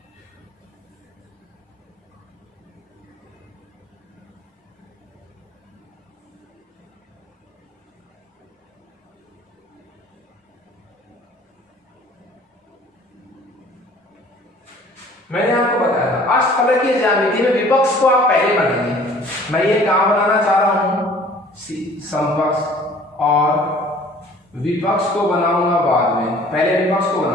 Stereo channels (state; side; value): normal; both; correlation 0.51